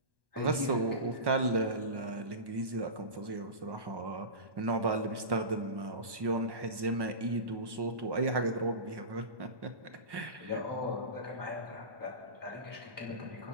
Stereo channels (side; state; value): left; late; 1.1 ms